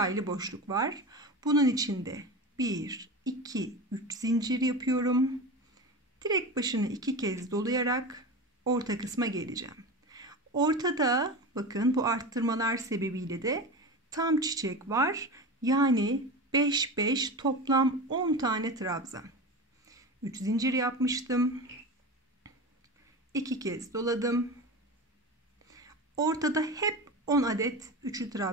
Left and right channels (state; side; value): normal; both; correlation 0.27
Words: aylı boşluk var. Bunun içinde 1, 2, 3 zincir yapıyorum. Direkt başını 2 kez dolayarak orta kısma geleceğim. Ortada bakın bu arttırmalar sebebiyle de tam çiçek var. Yani 5, 5 toplam 10 tane trabzan. 3 zincir yapmıştım. 2 kez doladım. Ortada hep 10 adet üçlü